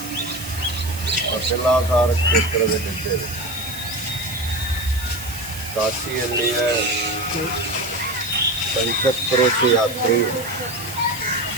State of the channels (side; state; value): right; noise; hiss, 12 dB below the sound